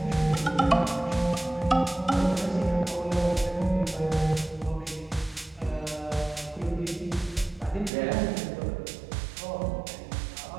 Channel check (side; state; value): left; drops out; at 7.9 s